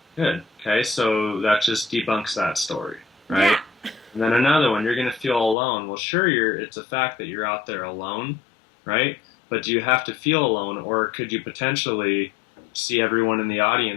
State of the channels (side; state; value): right; drops out; at 5.6 s